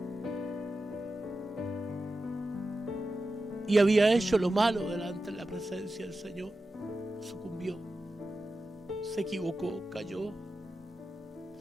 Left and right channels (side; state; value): both; normal; correlation 0.92